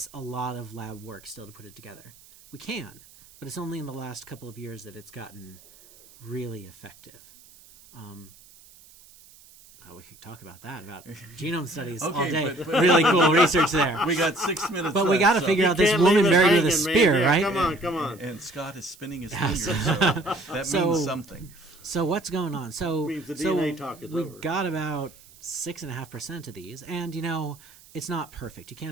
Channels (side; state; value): right; noise; hiss, 24 dB below the sound